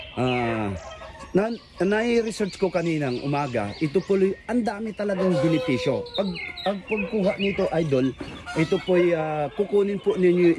Na-research ko kaninang umaga, ito po ang dami talagang benepisyo. Pagkuha nito idol, ito po kukunin po ninyo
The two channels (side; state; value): both; identical; correlation 1.00